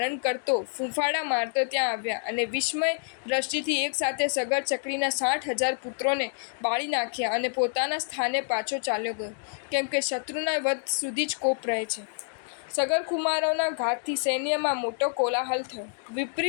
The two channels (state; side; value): silent; right; digital silence